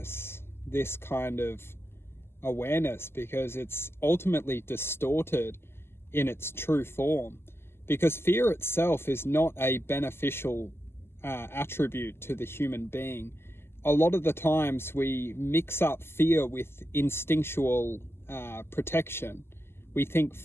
this kind of awareness because it's ultimately distorted in its true form. Because fear itself is not a beneficial attribute to the human being. A lot of the times we mix up fear with instinctual protection. We think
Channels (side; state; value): right; late; 0.12 ms